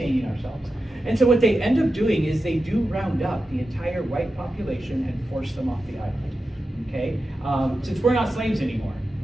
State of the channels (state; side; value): normal; both; correlation 0.91